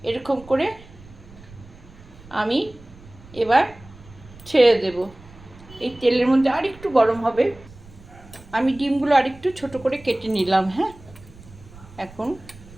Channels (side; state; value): right; noise; rumble, 21 dB below the sound